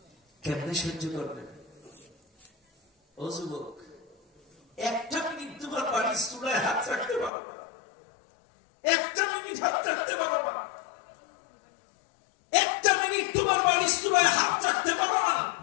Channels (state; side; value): drops out; right; at 7.3 s